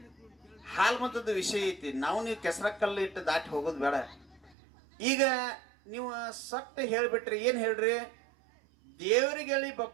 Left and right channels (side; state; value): left; drops out; at 4.5 s